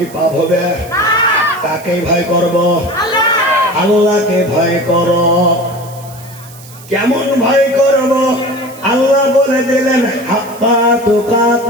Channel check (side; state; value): right; noise; hiss, 20 dB below the sound